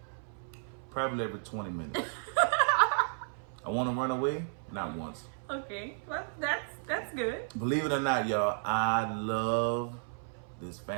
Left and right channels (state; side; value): silent; left; 56 dB below the other